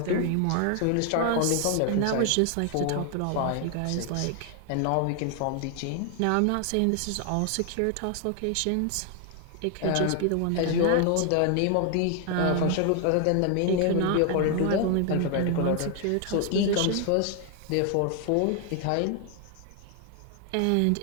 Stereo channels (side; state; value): both; different; correlation 0.00